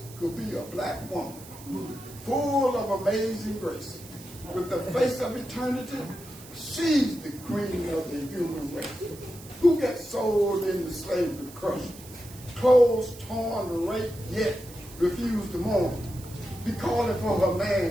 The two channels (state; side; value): noise; right; hiss, 18 dB below the sound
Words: could be a black woman full of amazing grace? With the face of eternity, she's the queen of the human race. Who gets sold into slavery crushed, clothes torn, raped, yet refused to mourn? Be calling for her